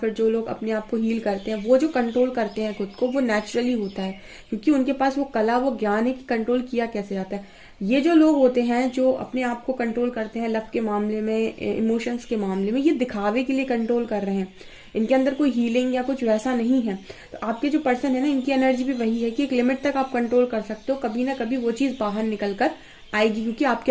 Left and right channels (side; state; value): both; identical; correlation 1.00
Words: जो लोग अपने आप को हील करते हैं, वो जो कंट्रोल करते हैं खुद को, वो नेचुरली होता है, क्योंकि उनके पास वो कला, वो ज्ञान है कि कंट्रोल किया कैसे जाता है। ये जो लोग होते हैं जो अपने आप को कंट्रोल करते हैं लव के मामले में, इमोशंस के मामले में, ये दिखावे के लिए कंट्रोल कर रहे हैं, इनके अंदर कोई हीलिंग या कुछ वैसा नहीं है। तो आपके जो पर्सन है ना, इनकी एनर्जी भी वही है कि एक लिमिट तक आप कंट्रोल कर सकते हो, कभी ना कभी वो चीज बाहर निकल कर आएगी, क्योंकि